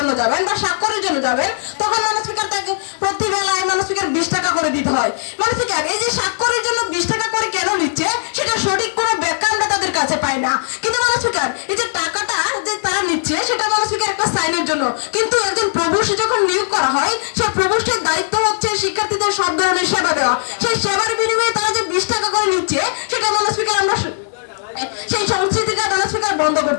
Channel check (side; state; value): right; silent; 67 dB below the other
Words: যাবেন বা স্বাক্ষরের জন্য যাবেন তখন মাননীয় স্পিকার তাকে প্রতি বেলায় মাননীয় স্পিকার 20 টাকা করে দিতে হয়। মাননীয় স্পিকার এই যে স্বাক্ষরের জন্য 20 টাকা করে কেন নিচ্ছে সেটা সঠিক কোনো ব্যাখ্যা আমরা তাদের কাছে পাই না। কিন্তু মাননীয় স্পিকার এই যে টাকাটা যে তারা নিচ্ছে সেটা মাননীয় স্পিকার একটা সাইনের জন্য, কিন্তু একজন প্রভোস্ট যখন নিয়োগ করা হয় সেই প্রভোস্টের দায়িত্ব হচ্ছে শিক্ষার্থীদের সব ধরনের সেবা দেওয়া। সেই সেবার বিনিময়ে তারা যে 20 টাকা করে দিচ্ছে, সেটা মাননীয় স্পিকার আমরা সেই সংস্কৃতিটা মাননীয় স্পিকার বন্ধ